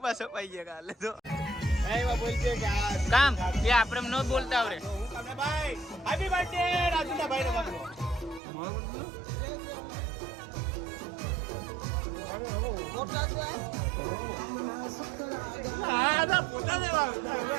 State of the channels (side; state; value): left; drops out; at 8.4 s